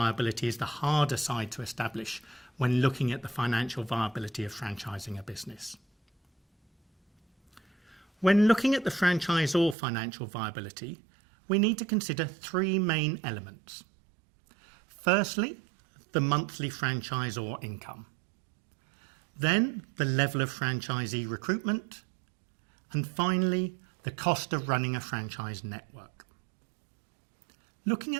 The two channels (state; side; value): drops out; left; at 9.8 s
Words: is the harder side to establish when looking at the financial viability of franchising a business. When looking at the franchisor financial viability, we need to consider 3 main elements. Firstly, the monthly franchisor income. Then the level of franchisee recruitment, and finally, the cost of running a franchise network. Looking